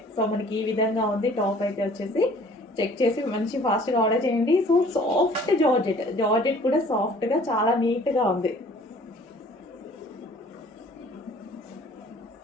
సో మనకి ఈ విధంగా ఉంది టాప్ అయితే వచ్చేసి. చెక్ చేసి మంచి ఫాస్ట్గా ఆర్డర్ చేయండి. సో సాఫ్ట్ జార్జెట్ కూడా సాఫ్ట్గా చాలా నీట్గా ఉంది.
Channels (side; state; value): both; normal; correlation 0.53